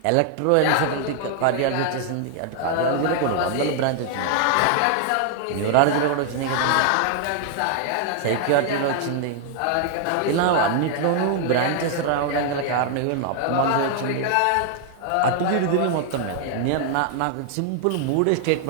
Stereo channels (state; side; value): different; both; correlation 0.00